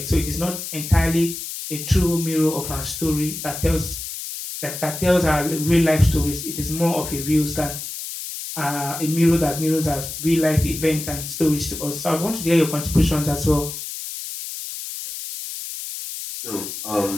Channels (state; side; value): noise; left; hiss, 8 dB below the sound